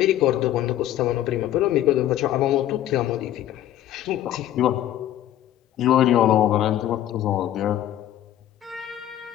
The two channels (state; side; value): quieter; right; 12.5 dB